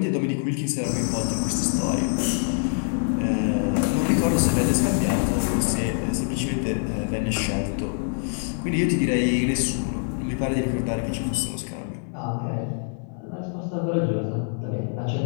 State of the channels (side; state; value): right; silent; digital silence